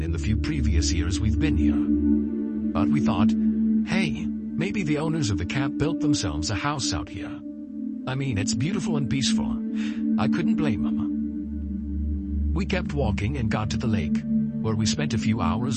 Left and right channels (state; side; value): identical; both; correlation 1.00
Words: in the few previous years we've been here. But we thought, hey, maybe the owners of the camp built themselves a house out here. I mean, it's beautiful and peaceful. I couldn't blame them. We kept walking and got to the lake, where we spent a few